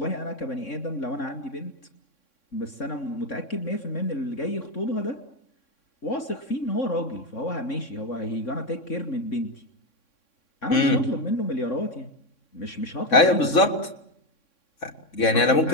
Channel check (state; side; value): late; right; 3.6 ms